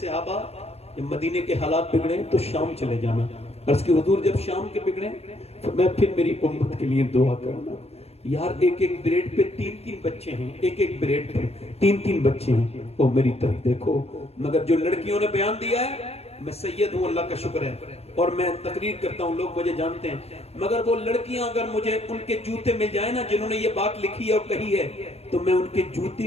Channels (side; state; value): right; late; 0.30 ms